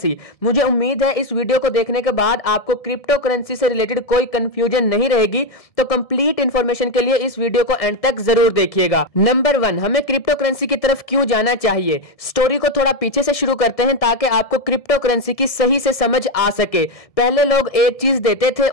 मुझे उम्मीद है इस वीडियो को देखने के बाद आपको क्रिप्टो करेंसी से रिलेटेड कोई कंफ्यूजन नहीं रहेगी, तो कंप्लीट इंफॉर्मेशन के लिए इस वीडियो को एंड तक जरूर देखिएगा। नंबर 1, हमें क्रिप्टो करेंसी की तरफ क्यों जाना चाहिए। स्टोरी को थोड़ा पीछे से शुरू करते हैं ताकि आपको क्रिप्टो करेंसी की सही से समझ आ सके। पहले लोग एक चीज देते थे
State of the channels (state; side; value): late; right; 1.7 ms